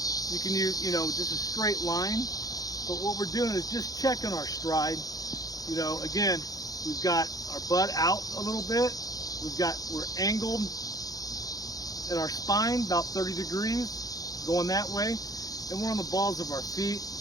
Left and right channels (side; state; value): right; late; 0.18 ms